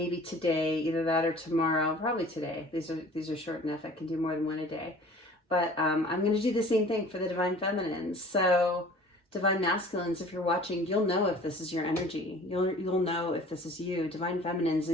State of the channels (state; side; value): normal; both; correlation 0.47